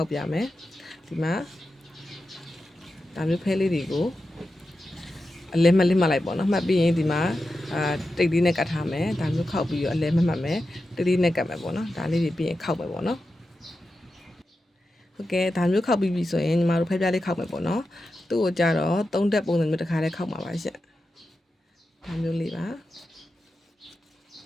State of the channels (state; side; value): normal; both; correlation 0.91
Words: က်ပြမယ်ဒီမှာဒါမျိုးဖဲလေးတွေကိုအလဲမလစ်မှတ်လိုက်ပေါ့နော်မှတ်ပြီးရင်ဒီမှာတိတ်လေးနဲ့ကတ်ထားမယ်ဒါမျိုးခောက်ပြီးတော့အလဲမှတ်မယ်တိတ်လေးနဲ့ကတ်မယ်ပေါ့နော်ဒါလေးတွေပြီးရင်ခောက်မယ်ပေါ့နော်ဟုတ်ကဲ့ဒါမျိုးခောက်ပြီးပြီဆိုရင်ညီမတို့ဖဲပြားလေးခောက်မယ်ပေါ့နော်သူ့ကိုကြတော့3တက်ပုံစံမျိုးတစ်ခါလေးခောက်မှာပါရှင့်ဒါမျိုးလေးပါ